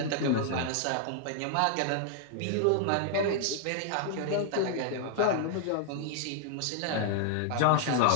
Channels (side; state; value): both; different; correlation 0.00